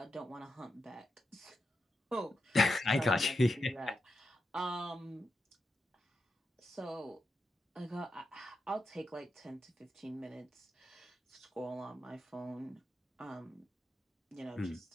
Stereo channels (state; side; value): normal; both; correlation 0.87